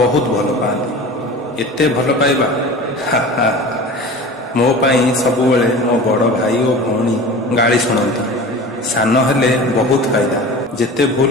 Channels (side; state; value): both; normal; correlation 0.36